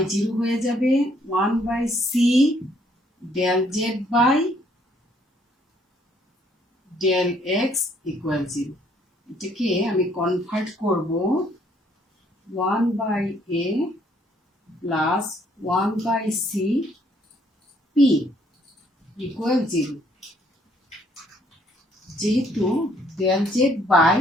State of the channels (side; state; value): both; normal; correlation 0.66